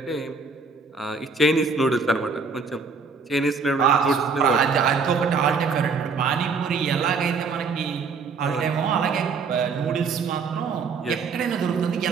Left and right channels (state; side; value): quieter; left; 4.9 dB